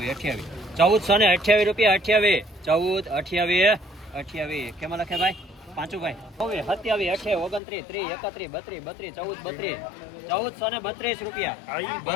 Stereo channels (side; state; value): right; drops out; at 7.6 s